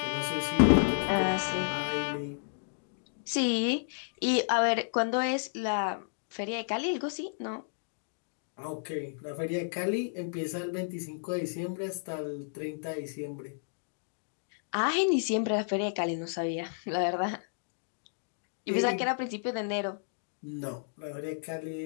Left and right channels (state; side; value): silent; right; digital silence